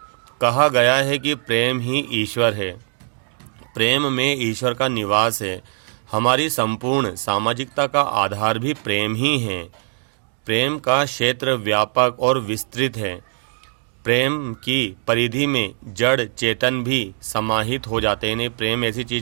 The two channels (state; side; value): silent; left; digital silence